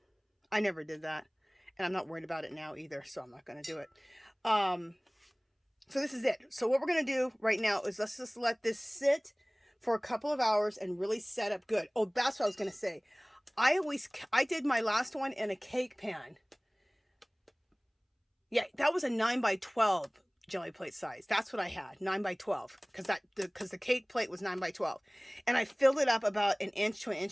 never did that. And I'm not worried about it now either, so I'm not going to do it. So this is it. So what we're going to do right now is let's just let this sit for a couple of hours and really set up good. Oh, that's what I was going to say. I did my last one in a cake pan. Yeah, that was a 9x12 jelly plate size. That's what I had, 9x12, because the cake plate was 9x12. And I filled it up about 1 inch to 1.5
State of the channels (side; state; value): both; identical; correlation 1.00